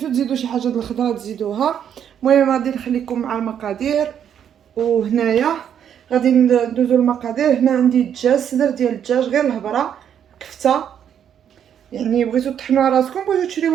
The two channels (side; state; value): left; quieter; 9.0 dB